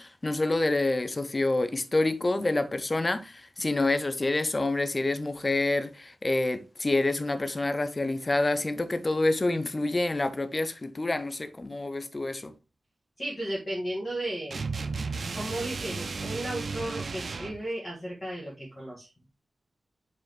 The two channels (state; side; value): normal; both; correlation 0.97